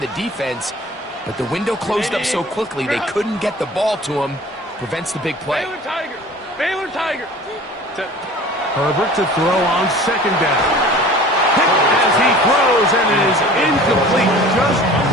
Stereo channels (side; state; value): both; normal; correlation 0.44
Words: defense, but the window closed up so quickly they couldn't get the ball to him. Prevents the big play. Baylor Tiger. Set. Herbert to throw on 2nd down. As he throws, and it is incomplete. Just